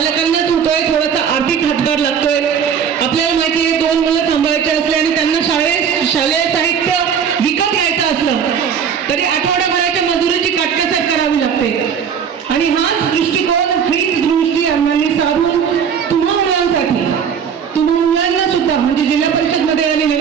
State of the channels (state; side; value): quieter; left; 7.4 dB